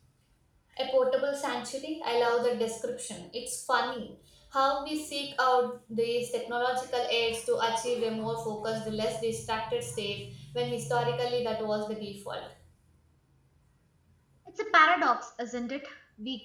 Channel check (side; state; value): both; identical; correlation 1.00